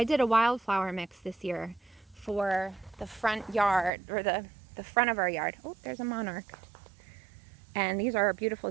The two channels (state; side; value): drops out; left; at 3.9 s